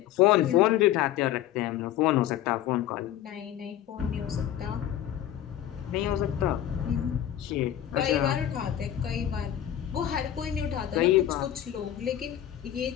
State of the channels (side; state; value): right; quieter; 11.6 dB